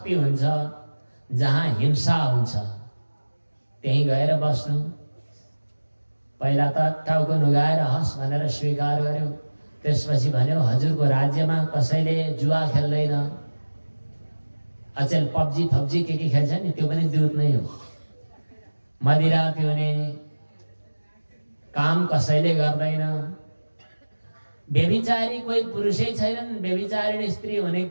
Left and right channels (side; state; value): both; inverted; correlation -1.00